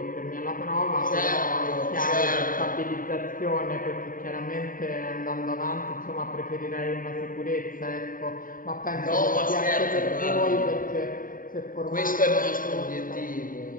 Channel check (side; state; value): right; late; 0.40 ms